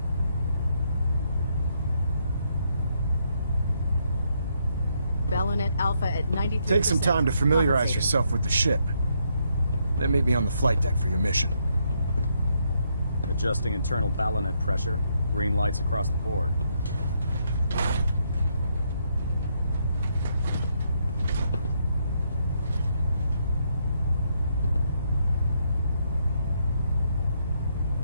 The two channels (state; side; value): inverted; both; correlation -0.76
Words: Balonet Alpha at 93%. Take some time to familiarize yourself with the ship. Then meet me on the flight deck for your mission. Adjusting internal balonet pressure. Green lights across the board.